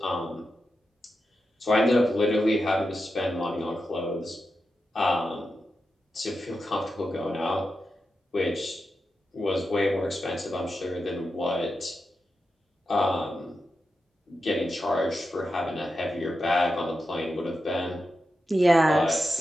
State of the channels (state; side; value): normal; both; correlation 0.89